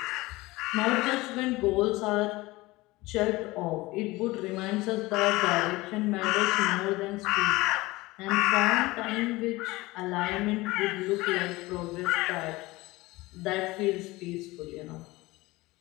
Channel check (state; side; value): quieter; right; 20.6 dB